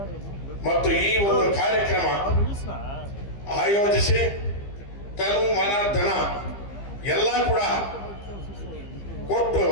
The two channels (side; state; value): right; late; 15 ms